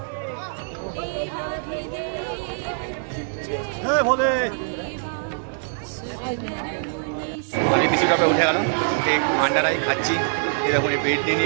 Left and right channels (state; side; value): silent; left; digital silence